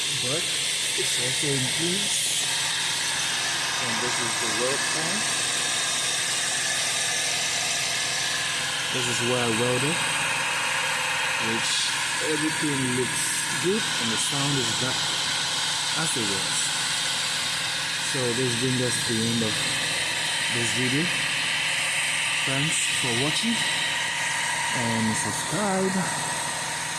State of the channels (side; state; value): both; identical; correlation 1.00